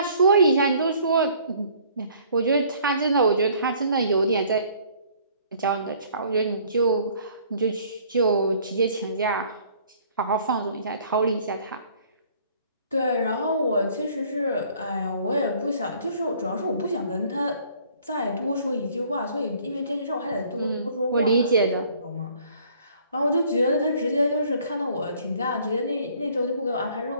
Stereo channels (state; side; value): inverted; both; correlation -0.58